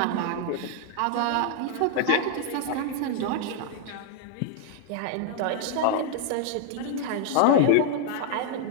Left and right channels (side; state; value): both; different; correlation 0.00